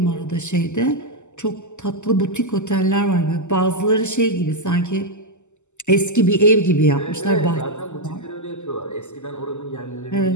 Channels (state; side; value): late; right; 0.84 ms